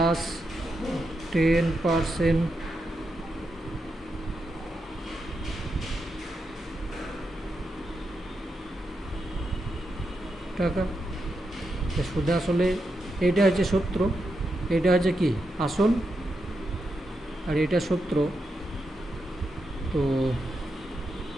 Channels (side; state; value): both; normal; correlation 0.85